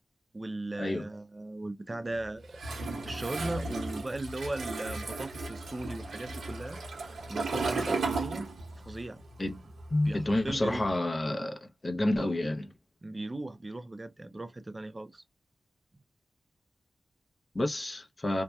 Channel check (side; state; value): both; normal; correlation 0.93